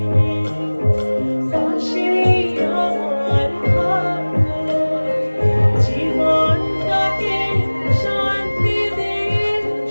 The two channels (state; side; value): inverted; both; correlation -1.00